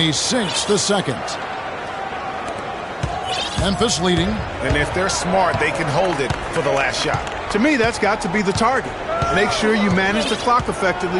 sinks the second. Memphis leading. And if they're smart, they can hold it for the last shot. To me, that's got to be the target. Make sure you manage the clock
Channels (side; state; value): both; identical; correlation 1.00